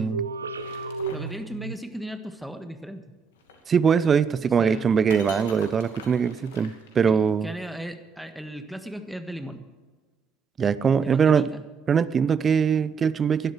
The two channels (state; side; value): quieter; left; 6.1 dB